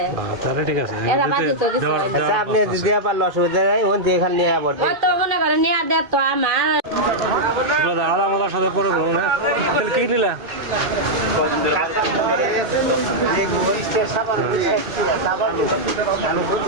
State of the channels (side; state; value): left; late; 2.1 ms